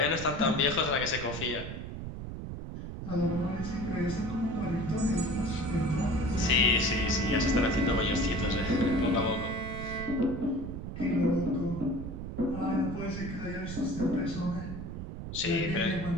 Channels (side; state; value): right; noise; rumble, 8 dB below the sound